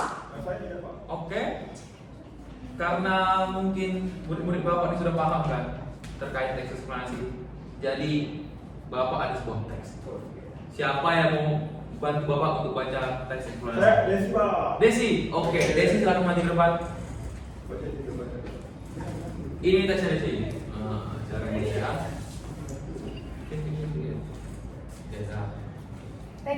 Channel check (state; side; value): identical; both; correlation 1.00